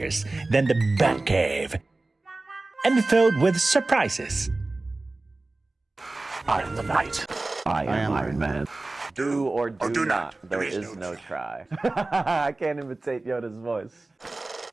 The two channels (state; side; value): quieter; left; 3.1 dB